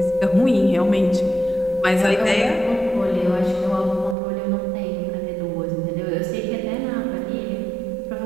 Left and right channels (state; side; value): drops out; left; at 4.2 s